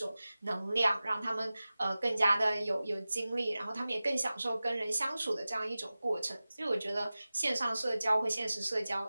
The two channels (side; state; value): both; inverted; correlation -0.96